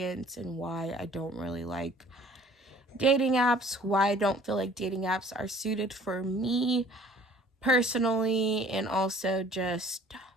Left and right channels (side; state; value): both; normal; correlation 0.52